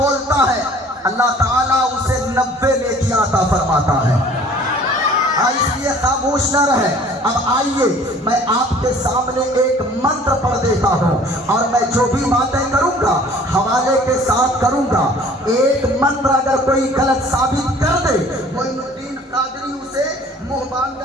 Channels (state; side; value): normal; both; correlation 0.51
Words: है, अल्लाह ताला उसे 90 नेकी अता फरमाता है। इसलिए खामोश न रहे। अब आइए मैं आपके सामने एक मंत्र पढ़ देता हूँ और मैं जो भी बातें करूँगा हवाले के साथ करूँगा। एक मंत्र अगर कोई गलत साबित कर दे, मोइनुद्दीन कादरी उसे